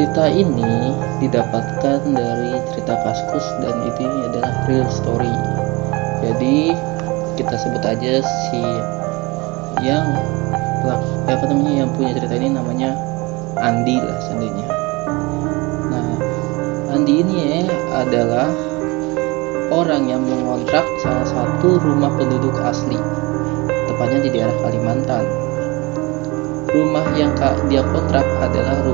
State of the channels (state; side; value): quieter; left; 24.6 dB